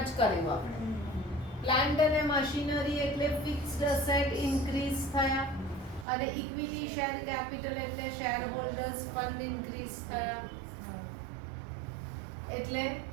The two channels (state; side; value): drops out; left; at 6.1 s